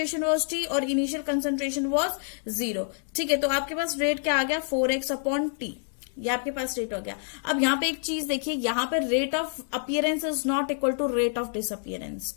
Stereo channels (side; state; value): right; silent; 60 dB below the other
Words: वाज t और इनिशियल कंसंट्रेशन वाज 0। ठीक है, तो आपके पास रेट क्या आ गया, 4x अपॉन टी, ये आपके पास रेट हो गया। अब यहाँ पे एक चीज देखिए, यहाँ पे rate of appearance is not equal to rate of disappearance.